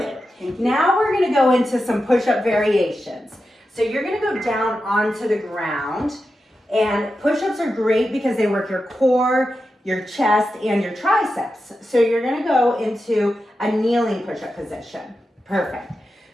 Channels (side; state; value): both; normal; correlation 0.90